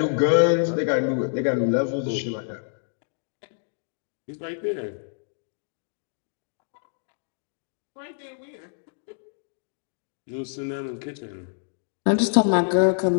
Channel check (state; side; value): silent; right; digital silence